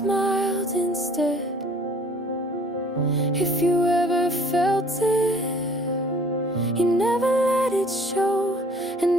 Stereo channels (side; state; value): both; normal; correlation 0.54